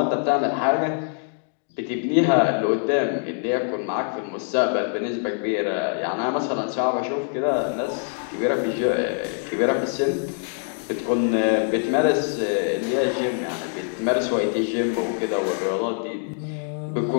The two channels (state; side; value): silent; right; 63 dB below the other